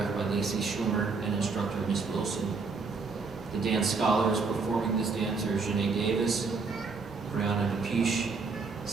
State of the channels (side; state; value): left; quieter; 4.5 dB